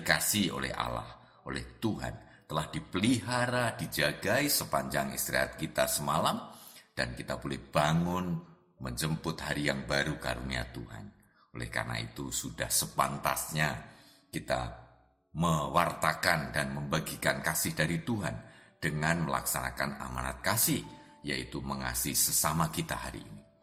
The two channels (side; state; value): both; identical; correlation 1.00